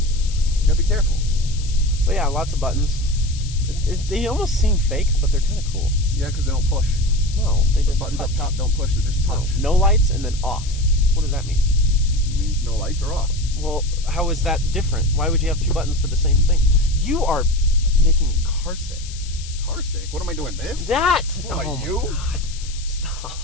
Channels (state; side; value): noise; left; hiss, 15 dB below the sound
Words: You gotta be careful. But yeah, lots of buttons. They almost seem fake, but they're kind of cool. Yeah, because they don't push. No, they just Buttons touch. up top don't push. They just touch. No lights and then off. What does that mean? It means no lights are off. Well, how is that different? Why would you have 2 buttons for the same thing? You are making me car sick. Car sick? What am I doing? This? That! What, Oh my you? God.